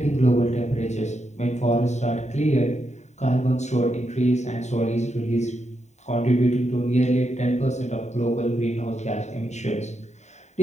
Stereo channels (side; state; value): right; late; 0.33 ms